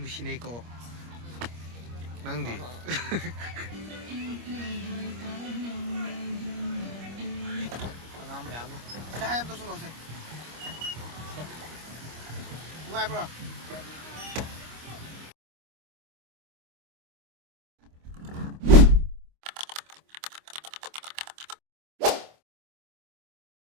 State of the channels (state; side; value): late; left; 25 ms